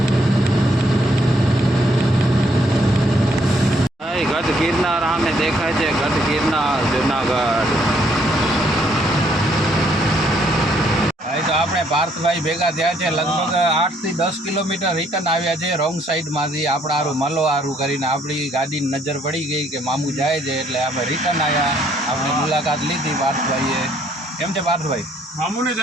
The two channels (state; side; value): normal; both; correlation 0.68